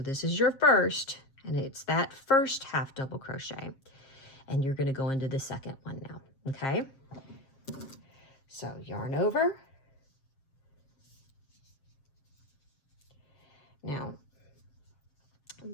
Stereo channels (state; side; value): late; right; 7.5 ms